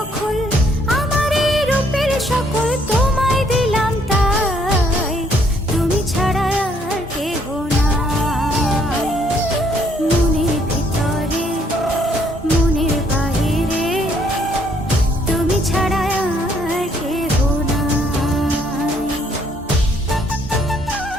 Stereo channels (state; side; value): normal; both; correlation 0.68